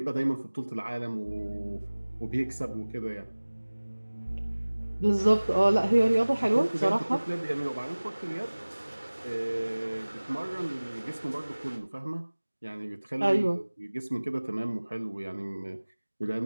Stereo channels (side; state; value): both; inverted; correlation -1.00